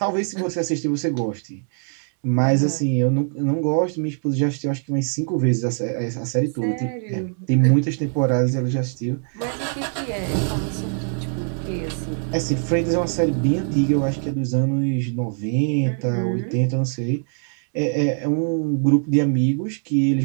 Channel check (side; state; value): left; silent; 58 dB below the other